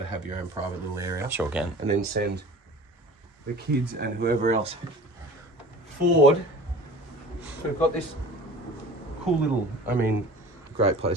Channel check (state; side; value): normal; both; correlation 0.41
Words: of have your own private little area. Sure can. And then send the kids and whoever else forward. So we've got this cool little, great